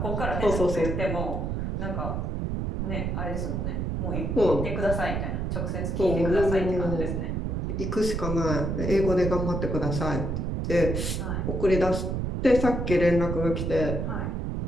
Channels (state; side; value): noise; right; rumble, 1 dB below the sound